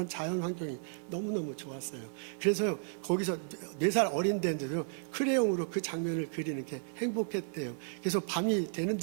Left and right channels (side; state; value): left; silent; digital silence